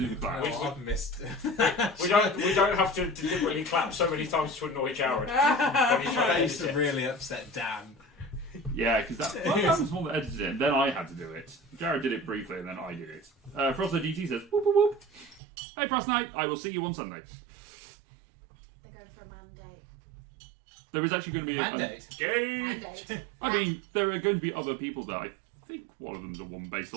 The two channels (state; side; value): drops out; left; at 15.4 s